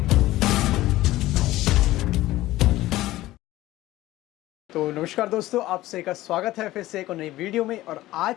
तो नमस्कार दोस्तों, आप सभी का स्वागत है फिर से एक और नई वीडियो में। और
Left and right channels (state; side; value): quieter; right; 16.4 dB